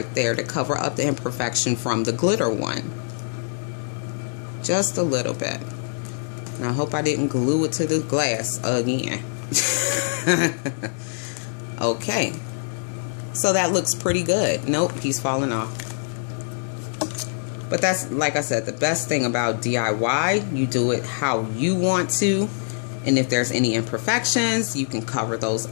there to cover up the imperfection from the glitter one, just a little bit. And I hope I didn't glue it to the glass again. Okay, so that looks pretty good. Nope, he's falling off. But that's, like I said, the best thing about DIY. You do it how you want to. And if there's any imperfections, you can cover those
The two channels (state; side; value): silent; right; digital silence